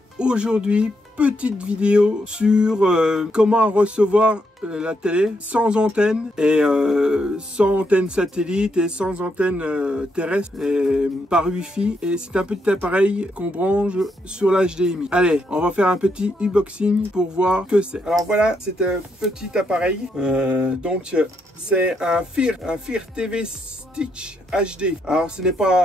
aujourd'hui, petite vidéo sur comment recevoir la télé sans antenne et sans antenne satellite et sans antenne terrestre et par wifi, et c'est un petit appareil qu'on branche sur l'HDMI. Allez, on va faire un petit unboxing pour voir ce que c'est. Alors voilà, c'est un petit appareil, donc c'est un FIR TV Stick HD. Alors ce n'est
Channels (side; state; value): both; normal; correlation 0.78